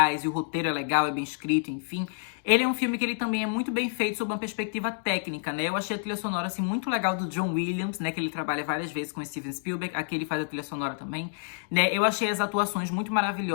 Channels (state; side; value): silent; right; digital silence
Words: e o roteiro é legal, é bem escrito, enfim, ele é um filme que ele também é muito bem feito sob uma perspectiva técnica, né? Eu achei a trilha sonora, assim, muito legal do John Williams, né, que ele trabalha várias vezes com o Steven Spielberg, aqui ele faz a trilha sonora também, né? Eu achei as atuações muito